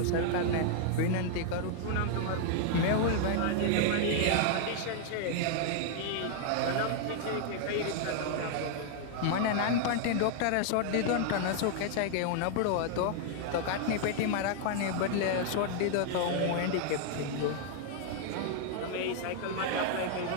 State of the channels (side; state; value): both; different; correlation 0.00